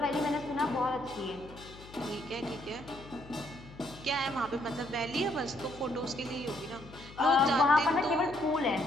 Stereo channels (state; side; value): noise; left; hum, 18 dB below the sound